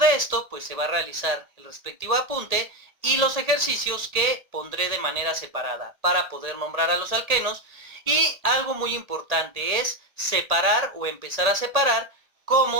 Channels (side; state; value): left; late; 1.8 ms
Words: esto? Pues se va a realizar el respectivo apunte y los ejercicios que pondré de manera separada para poder nombrar a los alquenos. Y algo muy importante es separar o empezar a separar